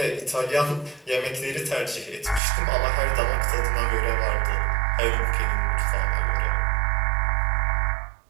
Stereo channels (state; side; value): drops out; left; at 2.4 s